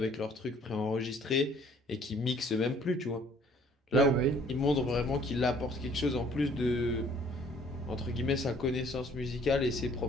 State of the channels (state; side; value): normal; both; correlation 0.58